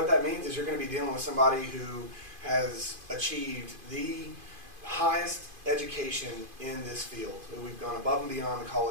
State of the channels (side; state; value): left; late; 2.5 ms